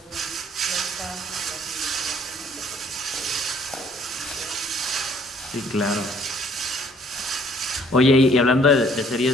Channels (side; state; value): both; normal; correlation 0.61